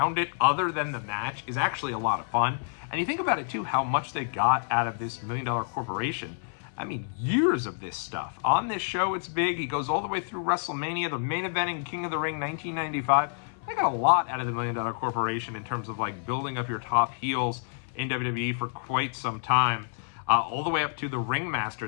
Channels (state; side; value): silent; right; 59 dB below the other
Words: it, other than the match, is actually a lot of fun. And you think about it, too, how much they got out of this $1 Million Corporation. I mean, years of this stuff. On this show, it's big. He goes all the way through WrestleMania, the main event in King of the Ring 1995. They got a lot out of the $1 Million Corporation in terms of like building up your top heels in WWE for quite some time. All the way up to the